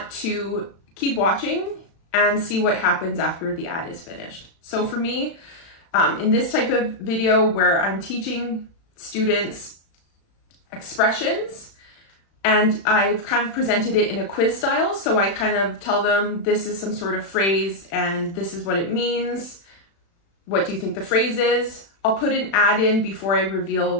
to keep watching and see what happens after the ad is finished. So for me, in this type of video where I'm teaching students expressions, and I've kind of presented it in a quiz style. So I kind of tell them this is some sort of phrase and this is what it means. What do you think the phrase is? I'll put an ad in before I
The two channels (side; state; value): right; late; 36 ms